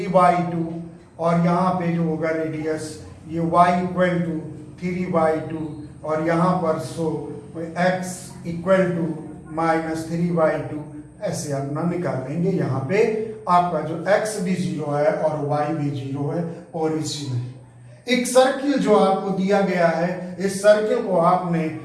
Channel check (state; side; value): identical; both; correlation 1.00